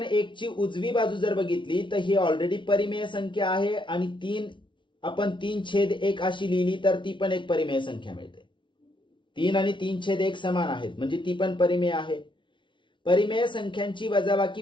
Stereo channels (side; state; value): right; late; 0.24 ms